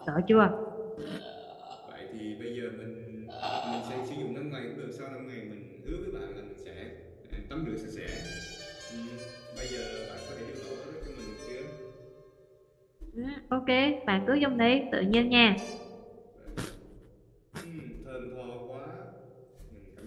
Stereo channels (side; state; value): both; identical; correlation 1.00